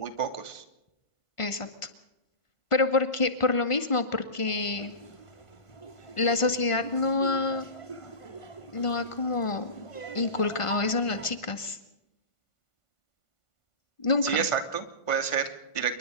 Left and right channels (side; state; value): right; late; 1.5 ms